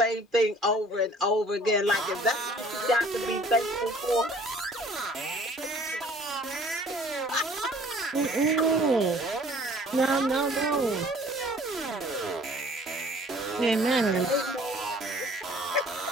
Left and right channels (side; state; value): both; normal; correlation 0.53